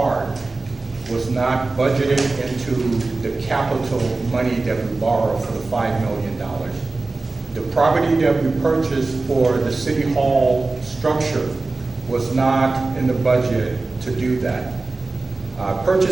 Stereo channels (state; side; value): quieter; left; 3.5 dB